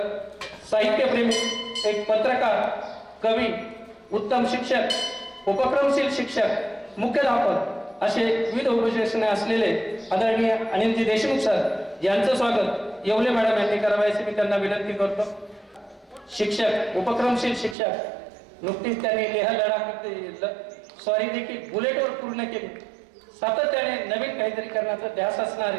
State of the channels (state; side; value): drops out; left; at 17.8 s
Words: साहित्यप्रेमी, एक पत्रकार, कवी, उत्तम शिक्षक, उपक्रमशील शिक्षक, मुख्याध्यापक असे विविध उपविशेषणे असलेले आदरणीय अनिलजी देशमुख सर यांचं स्वागत येवले मॅडम यांनी करावे अशी मी त्यांना विनंती करतो. शिक्षक, उपक्रमशील शिक्षक, नुकतीच त्यांनी लेह लडाख स्वारी देखील बुलेटवर पूर्ण केली. सातत्याने नवीन काहीतरी करण्याचा ध्यास असणारे